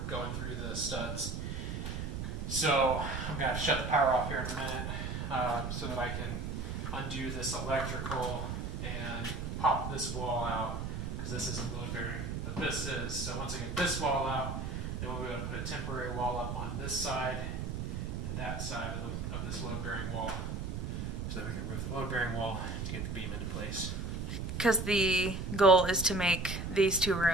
going through the studs. So I'm going to have to shut the power off here in a minute so that I can undo this electrical and pop this wall out, because this isn't load bearing, but this is. So once I get this wall out, then we'll be able to put a temporary wall up on this side and that side of this load bearing wall, so that we can remove the load bearing wall to get the beam into place. Because the goal is to make these two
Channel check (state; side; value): noise; right; rumble, 4 dB below the sound